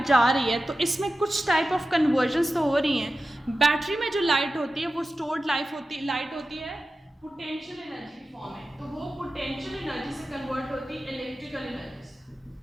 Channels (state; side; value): normal; both; correlation 0.94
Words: जा रही है तो इसमें कुछ टाइप ऑफ कन्वर्जन्स तो हो रही हैं. बैटरी में जो लाइट होती है वो स्टोर्ड लाइट होती है पोटेंशियल एनर्जी की फॉर्म में, तो वो पोटेंशियल एनर्जी से कन्वर्ट होती है इलेक्ट्रिकल एनर्जी से.